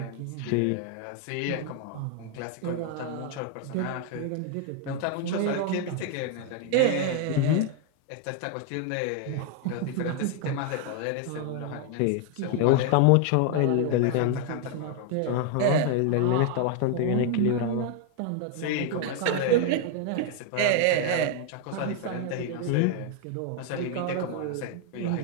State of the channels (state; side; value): different; both; correlation 0.00